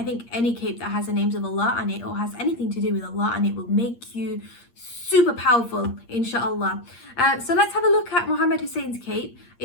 think any cape that has the names of Allah on it or has anything to do with Allah on it will make you super powerful, inshallah. So let's have a look at Mohammed Hussein's cape.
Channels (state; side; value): late; right; 8.5 ms